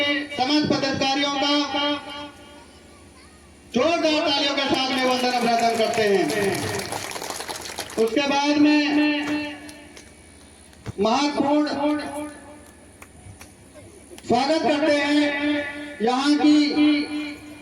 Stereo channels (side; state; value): both; identical; correlation 1.00